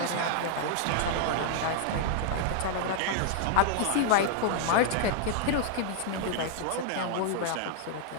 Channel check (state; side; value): different; both; correlation 0.00